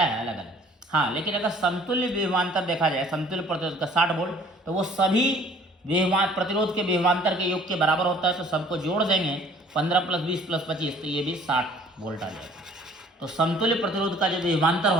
है, अलग अलग। हाँ, लेकिन अगर समतुल्य विभवांतर देखा जाए, समतुल्य प्रतिरोध का 60 वोल्ट, तो वो सभी प्रतिरोध के विभवांतर के योग के बराबर होता है। तो सबको जोड़ देंगे 15 + 20 + 25, तो ये भी 60 वोल्ट आ जाएगा। तो समतुल्य प्रतिरोध का जो विभवांतर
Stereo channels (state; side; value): normal; both; correlation 0.55